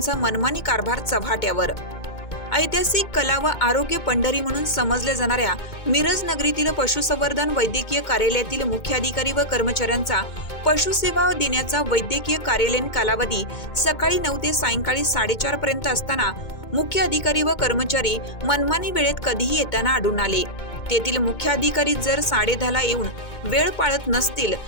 मनमानी कारभार चव्हाट्यावर। ऐतिहासिक कला व आरोग्य पंढरी म्हणून समजल्या जाणाऱ्या मिरज नगरीतील पशुसंवर्धन वैद्यकीय कार्यालयातील मुख्य अधिकारी व कर्मचाऱ्यांचा पशुसेवा देण्याचा वैद्यकीय कार्यालयीन कालावधी सकाळी 9 ते सायंकाळी 4:30 पर्यंत असताना मुख्य अधिकारी व कर्मचारी मनमानी वेळेत कधीही येताना आढळून आले। तेथील मुख्य अधिकारी जर 10:30ला येऊन वेळ पाळत नसतील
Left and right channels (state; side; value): late; right; 2.2 ms